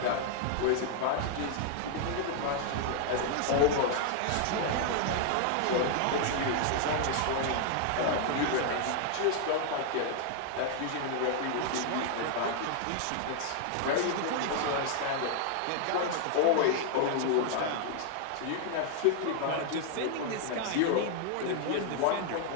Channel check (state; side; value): different; both; correlation 0.00